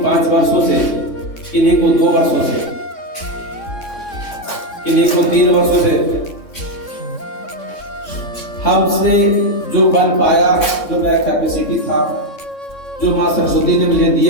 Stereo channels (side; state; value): right; late; 3.6 ms